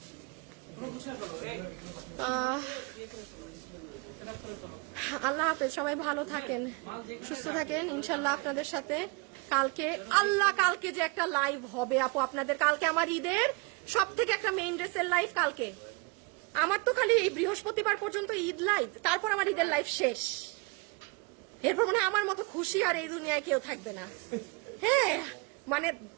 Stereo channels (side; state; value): left; quieter; 29.5 dB